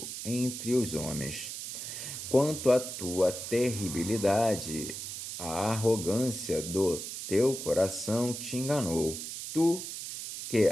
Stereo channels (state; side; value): noise; right; hiss, 7 dB below the sound